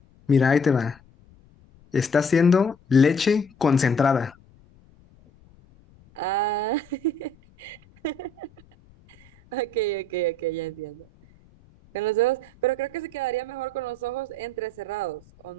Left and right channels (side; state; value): left; noise; rumble, 28 dB below the sound